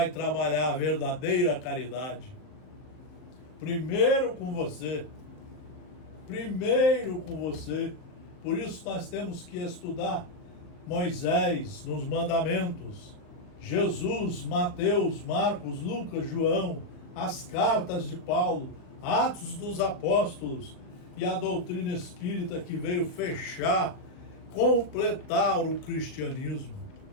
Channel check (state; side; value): late; right; 39 ms